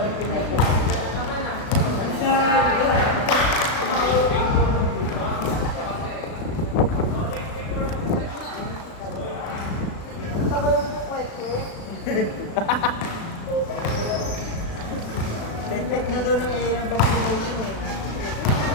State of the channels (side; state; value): right; late; 36 ms